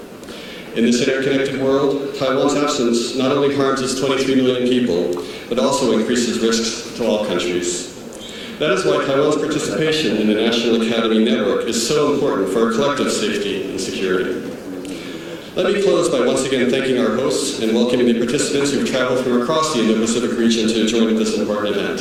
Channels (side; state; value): both; identical; correlation 1.00